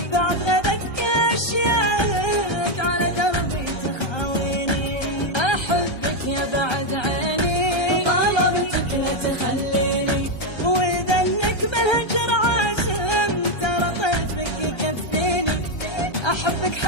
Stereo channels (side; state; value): right; late; 1.3 ms